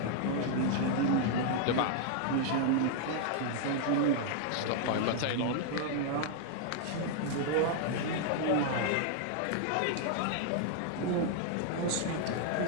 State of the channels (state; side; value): different; both; correlation 0.00